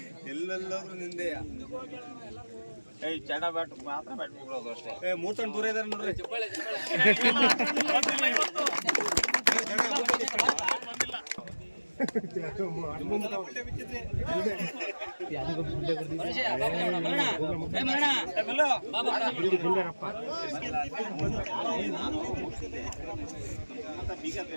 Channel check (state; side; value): inverted; both; correlation -1.00